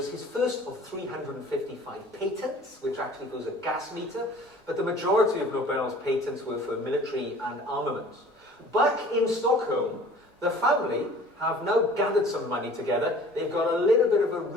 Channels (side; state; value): both; normal; correlation 0.48